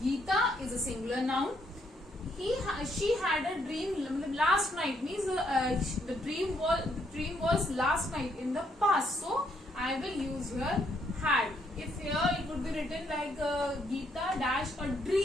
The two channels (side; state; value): both; normal; correlation 0.73